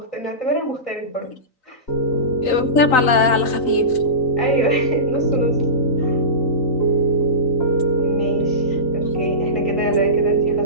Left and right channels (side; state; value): right; late; 3.9 ms